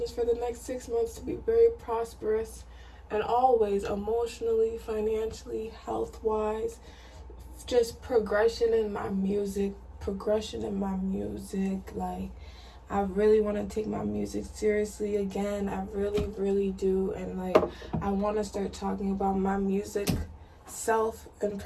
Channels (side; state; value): both; identical; correlation 1.00